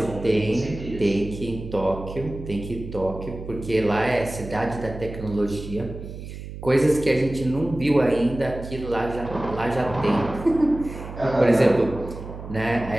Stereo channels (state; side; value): noise; right; hum, 11 dB below the sound